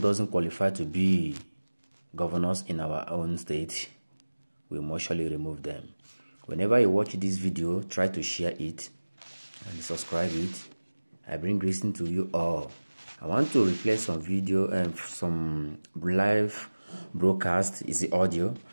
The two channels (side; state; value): both; inverted; correlation -1.00